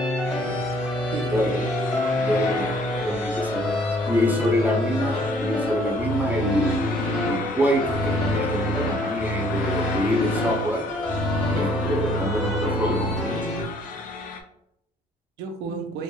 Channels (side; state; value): both; normal; correlation 0.61